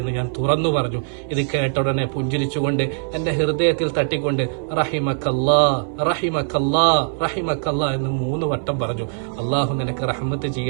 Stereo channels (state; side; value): silent; left; 62 dB below the other